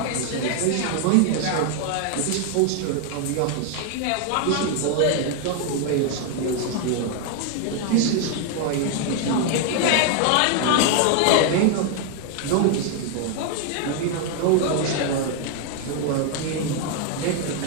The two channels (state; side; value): different; both; correlation 0.00